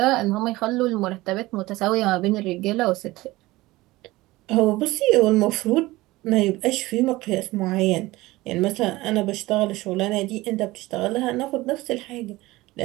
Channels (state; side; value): quieter; left; 19.2 dB